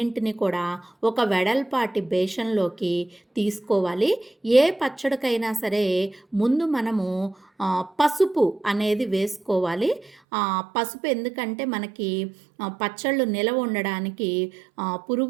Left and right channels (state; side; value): drops out; left; at 10.2 s